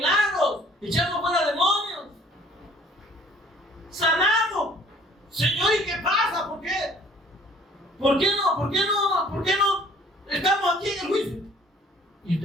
echamos fuera demonios, sanamos. Señor, ¿y qué pasa? ¿Por qué? ¿Por qué no estamos aquí en el juicio? ¿Y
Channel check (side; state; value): both; normal; correlation 0.55